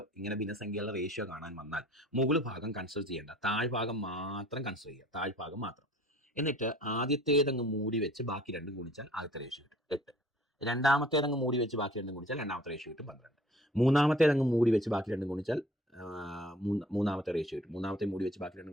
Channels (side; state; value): both; normal; correlation 0.52